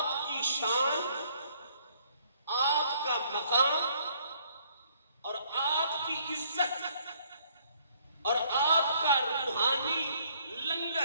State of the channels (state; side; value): inverted; both; correlation -0.64